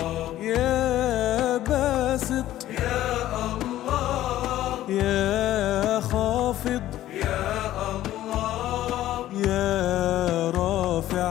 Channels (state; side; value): quieter; right; 13.8 dB